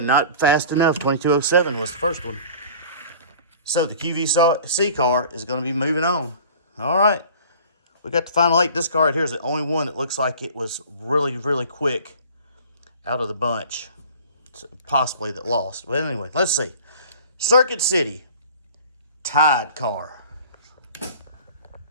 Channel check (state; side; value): inverted; both; correlation -0.45